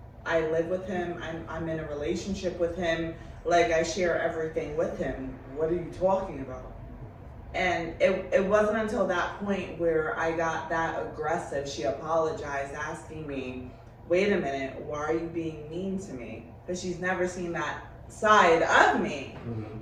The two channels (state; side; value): identical; both; correlation 1.00